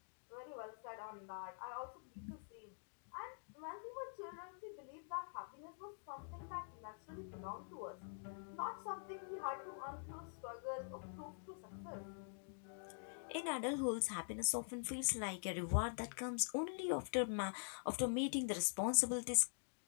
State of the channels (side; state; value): right; silent; digital silence